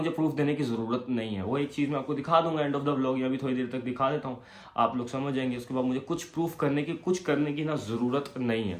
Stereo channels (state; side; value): identical; both; correlation 1.00